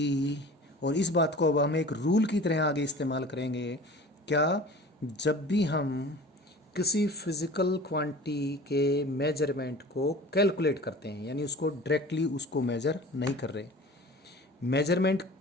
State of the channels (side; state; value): both; normal; correlation 0.41